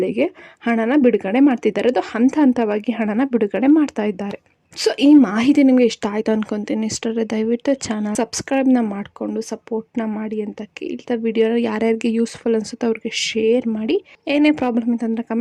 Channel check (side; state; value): both; identical; correlation 1.00